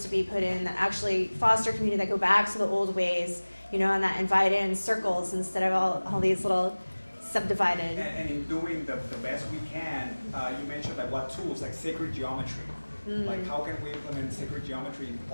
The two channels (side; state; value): both; inverted; correlation -1.00